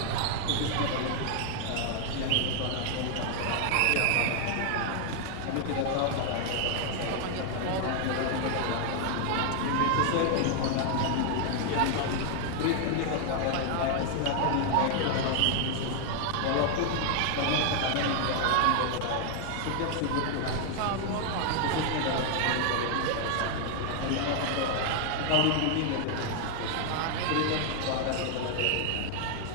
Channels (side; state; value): both; different; correlation 0.00